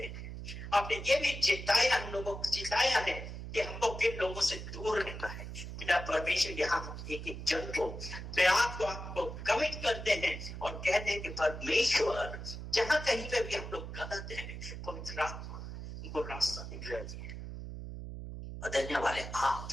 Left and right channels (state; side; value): noise; right; hum, 8 dB below the sound